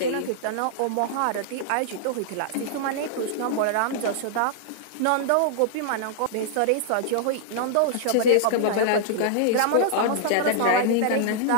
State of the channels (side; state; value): both; different; correlation -0.01